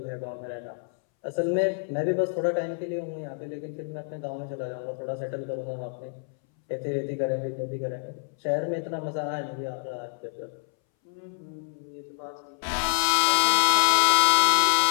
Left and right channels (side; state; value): right; silent; 60 dB below the other